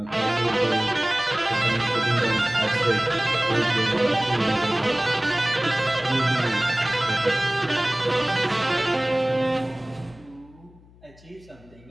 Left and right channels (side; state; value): left; noise; hum, 25 dB below the sound